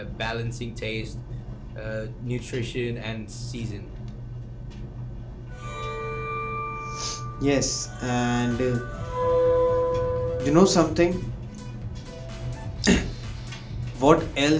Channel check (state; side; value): identical; both; correlation 1.00